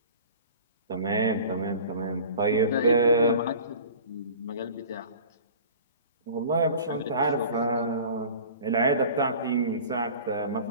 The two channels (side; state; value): both; inverted; correlation -0.42